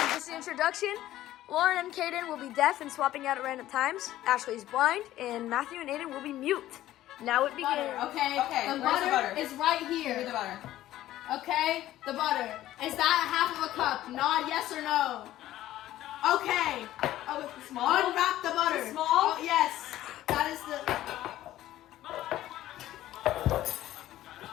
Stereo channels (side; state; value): right; quieter; 14.1 dB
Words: Just the introduction. Lauryn and Caiden will be deaf and swapping out at random times. Ashley is blind, and Matthew and Aidan will be mute. Now it begins. Okay, Okay, the butter is right Give me here. the butter. Okay, the butter. Is that half of a cup? Nod yes or no. Okay. Oh, it's small? Unwrap the butter. It's small? Oh, yes. That is the...